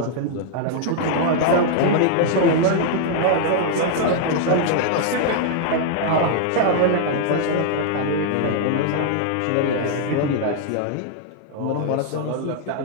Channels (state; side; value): different; both; correlation -0.01